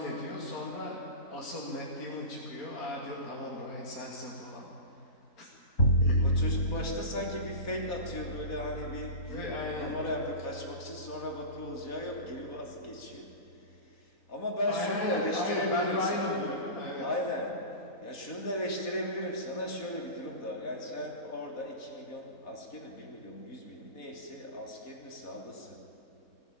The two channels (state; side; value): late; right; 4.1 ms